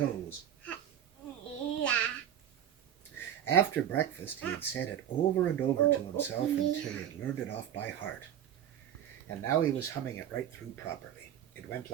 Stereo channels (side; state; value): left; quieter; 10.2 dB